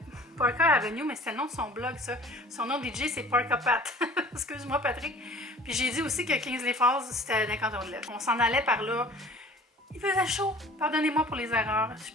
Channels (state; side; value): normal; both; correlation 0.48